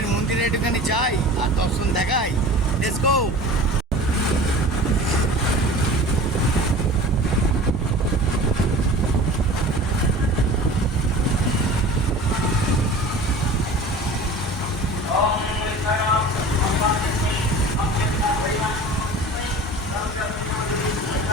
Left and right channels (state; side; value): normal; both; correlation 0.39